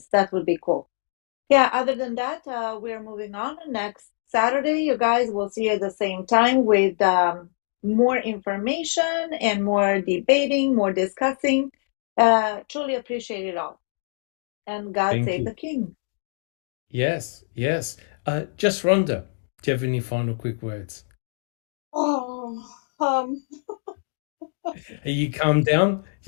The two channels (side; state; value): right; silent; digital silence